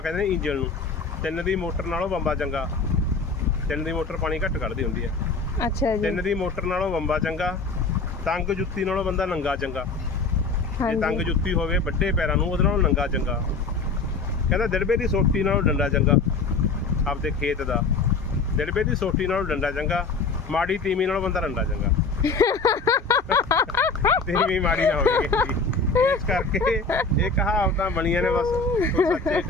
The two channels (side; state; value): right; quieter; 4.1 dB